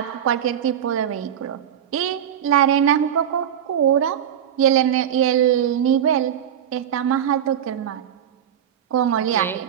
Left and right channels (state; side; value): quieter; left; 9.6 dB